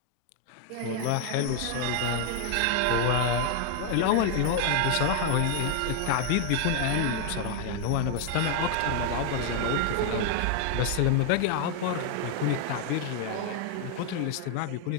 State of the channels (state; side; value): different; both; correlation 0.00